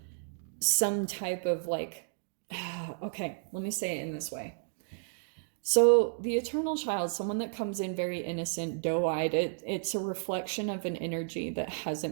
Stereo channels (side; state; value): left; silent; digital silence